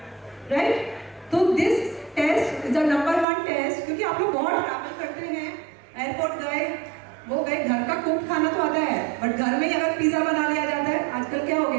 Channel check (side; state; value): left; drops out; at 3.2 s